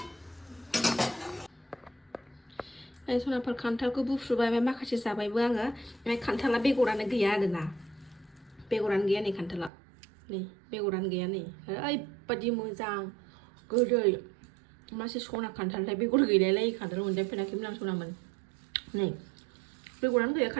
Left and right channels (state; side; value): drops out; left; at 9.7 s